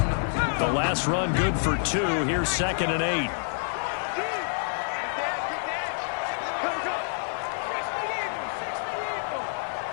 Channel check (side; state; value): right; silent; digital silence